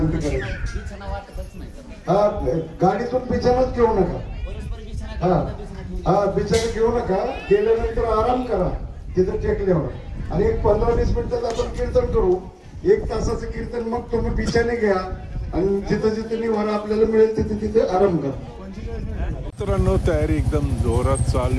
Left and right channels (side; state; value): both; identical; correlation 1.00